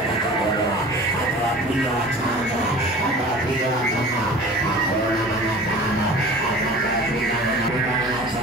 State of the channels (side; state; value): both; normal; correlation 0.41